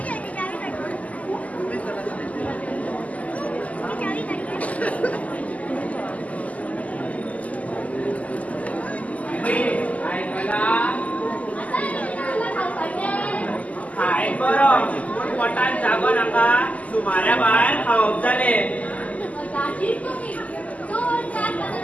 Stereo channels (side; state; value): right; late; 0.072 ms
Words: जागो नाका सुमाऱ्या भायर खावप जाले.